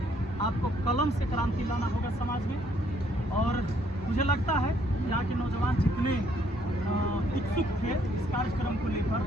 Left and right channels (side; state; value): both; normal; correlation 0.67